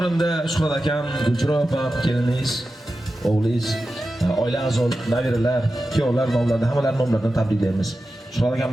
Shuhrat akam, Gulchiro opam, keliningiz, o'g'lingiz, oila a'zolar, nabiralar, kuyovlar nomlaridan hammalari nomlaridan tabriklaymiz. Shuhrat akam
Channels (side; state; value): both; normal; correlation 0.92